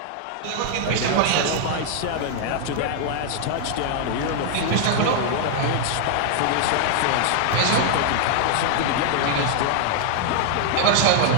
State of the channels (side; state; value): both; different; correlation 0.00